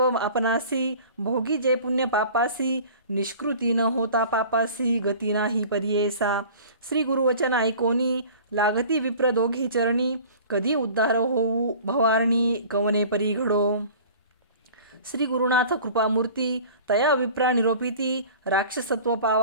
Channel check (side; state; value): both; inverted; correlation -0.44